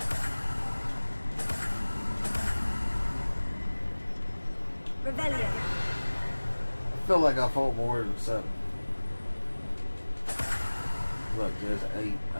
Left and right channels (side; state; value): both; inverted; correlation -1.00